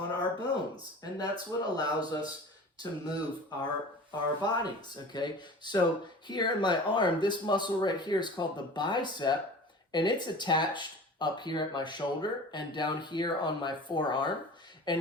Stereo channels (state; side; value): normal; both; correlation 0.39